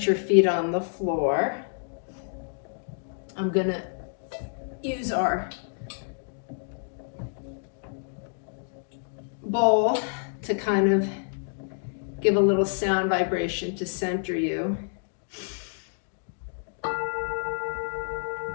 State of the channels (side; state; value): right; silent; digital silence